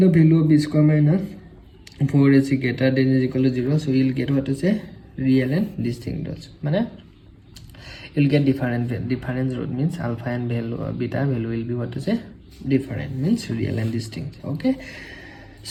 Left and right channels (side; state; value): both; identical; correlation 1.00